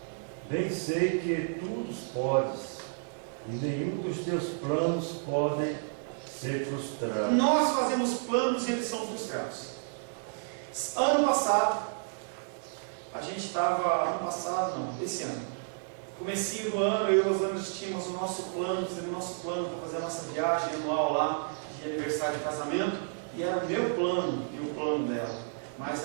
Bem sei que tudo podes, e nenhum dos teus planos podem ser frustrados. Nós fazemos planos e eles são frustrados. Ano passado, esse ano, comecinho do ano, eu e os anos tínhamos o nosso plano, fizemos o nosso plano para fazer a nossa viagem anual lá, de aniversário de casamento, e era o meu plano e o plano dela.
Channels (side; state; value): left; silent; digital silence